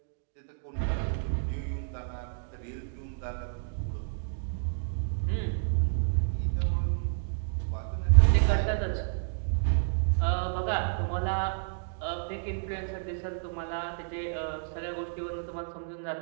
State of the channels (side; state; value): left; silent; digital silence